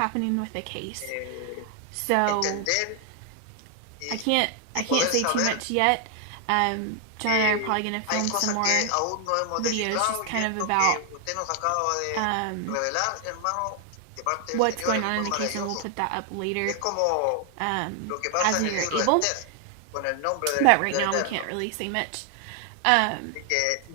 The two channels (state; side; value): different; both; correlation 0.00